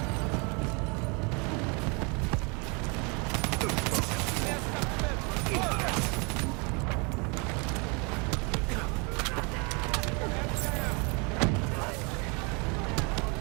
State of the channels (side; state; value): left; quieter; 31.8 dB